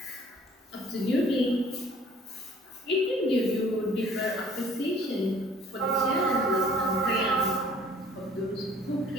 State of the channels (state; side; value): normal; both; correlation 0.55